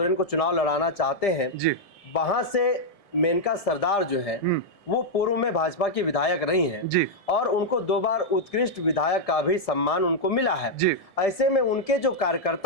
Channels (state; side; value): late; right; 1.7 ms